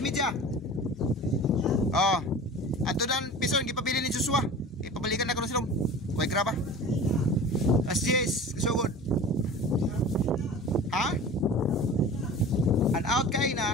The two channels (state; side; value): normal; both; correlation 0.38